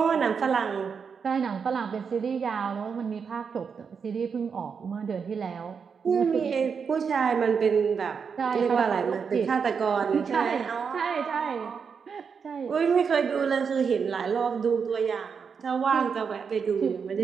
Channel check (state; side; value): quieter; left; 6.1 dB